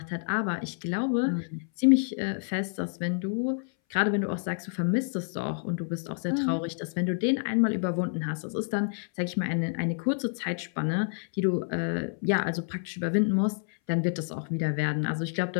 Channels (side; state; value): right; silent; 59 dB below the other